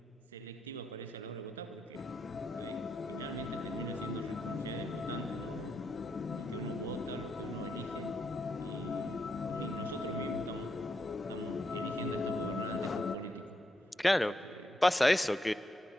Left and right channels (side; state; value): both; normal; correlation 0.81